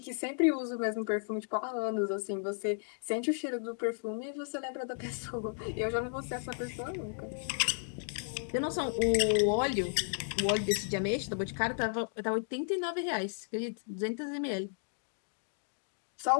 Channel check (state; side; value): silent; right; digital silence